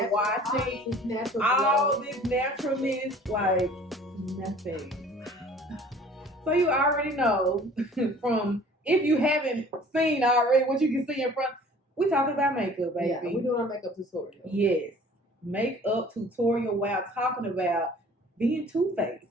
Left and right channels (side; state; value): both; normal; correlation 0.50